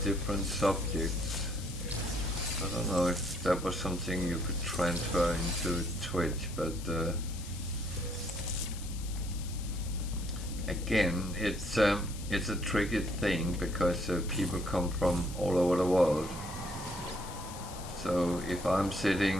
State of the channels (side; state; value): left; noise; hiss, 14 dB below the sound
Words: different subjects. I don't know if that was something you could transfer into Twitch, but again, it's a tricky thing because people come from all over the world. So if I'm